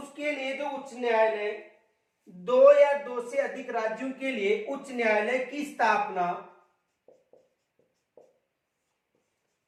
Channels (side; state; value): both; identical; correlation 1.00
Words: लिए जो उच्च न्यायालय, दो या दो से अधिक राज्यों के लिए उच्च न्यायालय की स्थापना